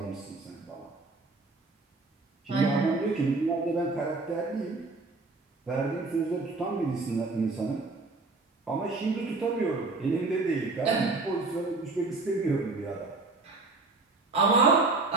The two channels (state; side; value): quieter; left; 3.6 dB